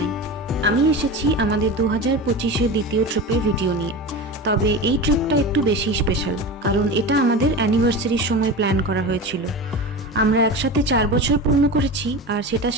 আমি এসেছি আমাদের 2025-এর দ্বিতীয় ট্রিপের ভিডিও নিয়ে। তবে এই ট্রিপটা একটু বেশি স্পেশাল, কারণ এটা আমাদের অ্যানিভার্সারির সময় প্ল্যান করা হয়েছিল। আমরা একসাথে 4 বছর পূর্ণ করেছি, আর সেটা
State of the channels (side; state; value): both; normal; correlation 0.28